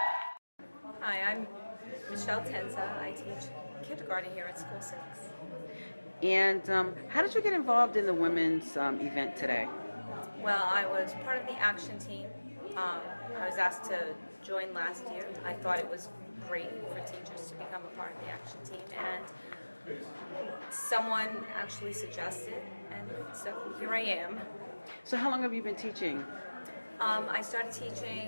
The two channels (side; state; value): both; inverted; correlation -1.00